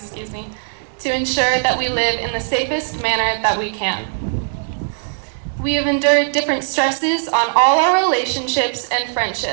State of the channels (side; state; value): left; silent; digital silence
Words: to ensure that we live in the safest manner that we can. We have endured different stresses on all our relationships and